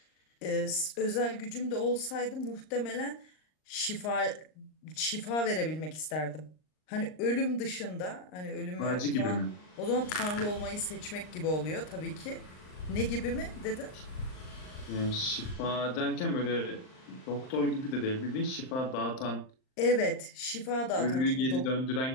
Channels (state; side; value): late; right; 39 ms